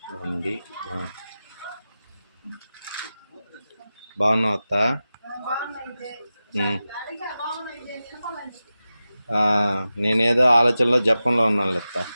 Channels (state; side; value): inverted; both; correlation -0.94